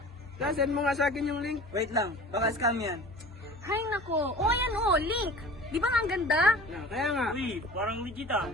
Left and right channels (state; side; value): normal; both; correlation 0.41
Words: Send mo nga sa akin yung link. Wait lang, baka scam yan. Hay nako. O ayan o, link. Di ba nga ang ganda? Kaya nga. Uy, parang legit ah.